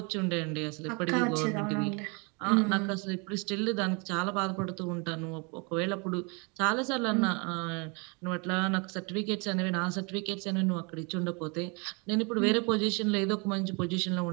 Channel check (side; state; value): left; quieter; 32.0 dB